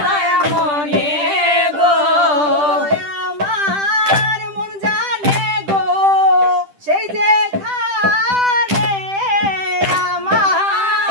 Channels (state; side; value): late; left; 10 ms